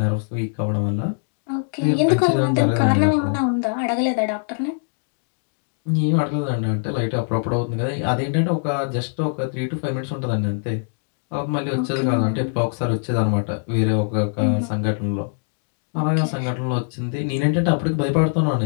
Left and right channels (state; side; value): silent; right; digital silence